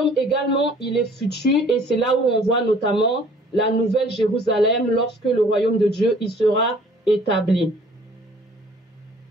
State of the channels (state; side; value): normal; both; correlation 0.54